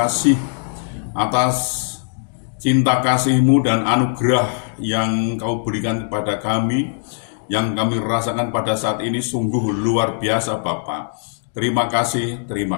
atas cinta kasih-Mu dan anugerah yang Kau berikan kepada kami, yang kami rasakan pada saat ini sungguh luar biasa Bapa. Terima kasih.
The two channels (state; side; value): silent; right; digital silence